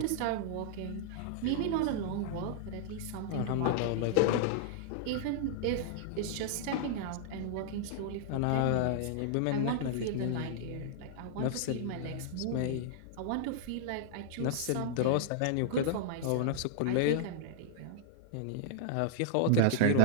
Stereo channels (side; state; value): both; different; correlation -0.01